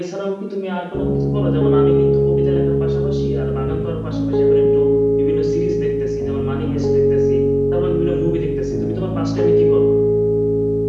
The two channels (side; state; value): both; identical; correlation 1.00